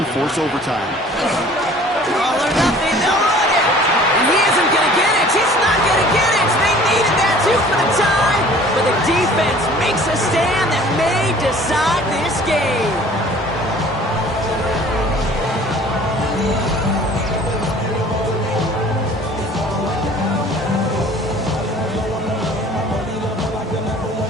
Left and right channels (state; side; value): normal; both; correlation 0.50